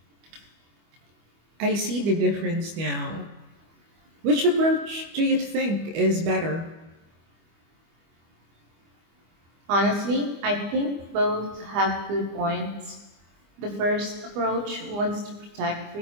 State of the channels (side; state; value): left; late; 25 ms